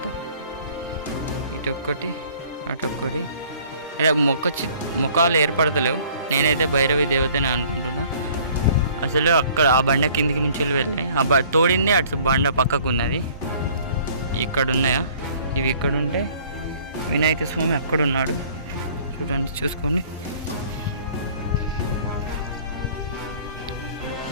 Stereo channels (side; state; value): both; inverted; correlation -0.54